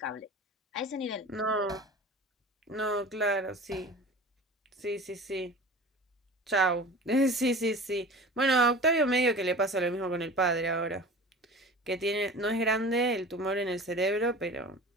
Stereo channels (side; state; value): both; normal; correlation 0.38